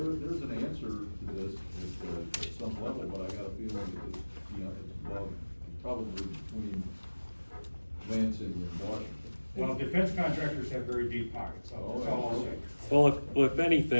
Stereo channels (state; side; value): inverted; both; correlation -1.00